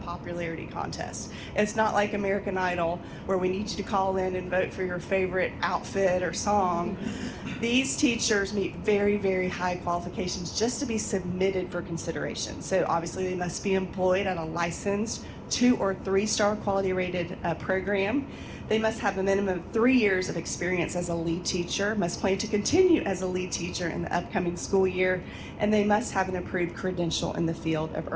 contest. It's not like American Idol where we need you to call in and vote for your favorite outfit or song. These teachers meet very, very high qualifications just to be submitted for consideration. So obviously they must be employed at a licensed 2 or 3-star quality rated program. They must have a minimum of 3 years of experience as a lead teacher, must plan to continue as a lead teacher in the upcoming school year, and they must have an approved credential in the field of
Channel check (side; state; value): both; identical; correlation 1.00